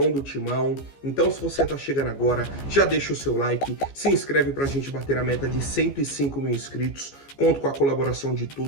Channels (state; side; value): late; right; 14 ms